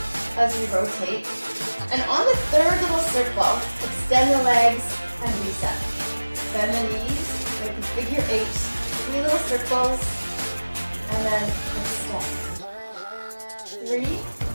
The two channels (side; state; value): both; inverted; correlation -1.00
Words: as we rotate. And on the 3rd little circle, extend the legs and reset. Bend the knees, make a figure 8, 3 little circles, and then extend. 3,